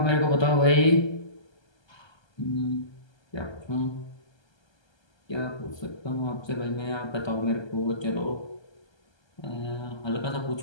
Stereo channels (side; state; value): right; late; 1.3 ms